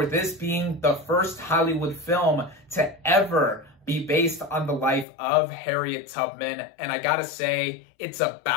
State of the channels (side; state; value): right; drops out; at 5.1 s